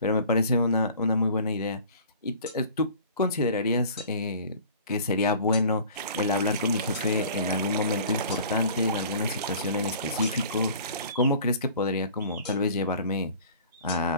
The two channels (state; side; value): inverted; both; correlation -0.46